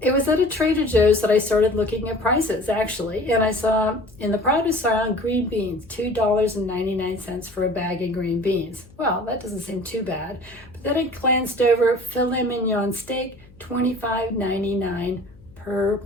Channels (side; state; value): left; noise; hum, 24 dB below the sound